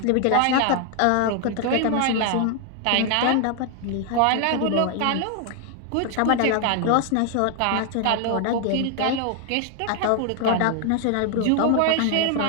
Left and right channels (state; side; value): different; both; correlation 0.00